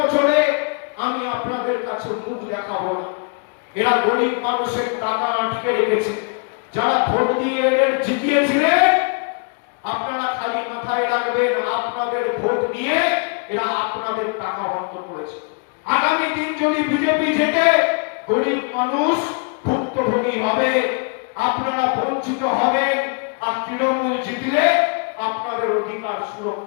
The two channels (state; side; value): quieter; right; 37.2 dB